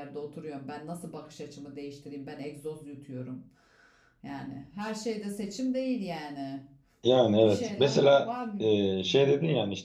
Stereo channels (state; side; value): identical; both; correlation 1.00